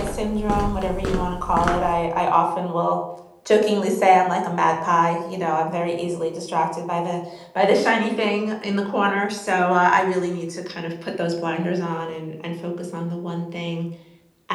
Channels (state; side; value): identical; both; correlation 1.00